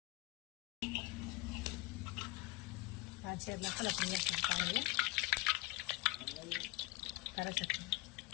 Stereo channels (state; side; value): quieter; right; 21.7 dB